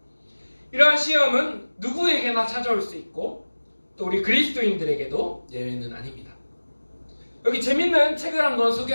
이러한 시험은 누구에게나 찾아올 수 있고 또 우리 그리스도인들에게도 예외는 아닙니다. 여기 재밌는 책을 한번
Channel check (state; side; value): inverted; both; correlation -1.00